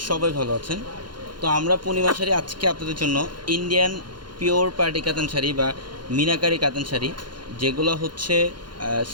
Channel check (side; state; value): left; late; 0.71 ms